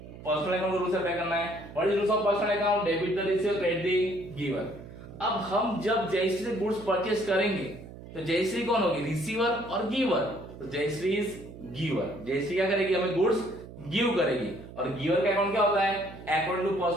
पर्सनल अकाउंट रूल से अप्लाई करना है। What is rules of personal account, debit the receiver, credit the giver. अब हम जब जयश्री से गुड्स परचेज करेंगे तो जयश्री कौन होगी, रिसीवर और गिवर। तो जयश्री इज गिवर। जयश्री क्या करेगी, हमें गुड्स गिव करेगी। और गिवर का अकाउंट क्या होता है, according to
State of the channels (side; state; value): right; noise; hum, 15 dB below the sound